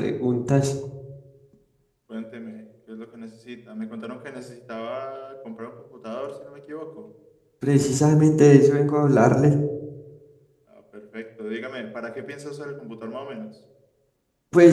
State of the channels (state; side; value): identical; both; correlation 1.00